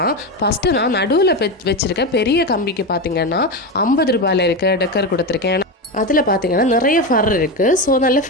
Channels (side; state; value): both; normal; correlation 0.16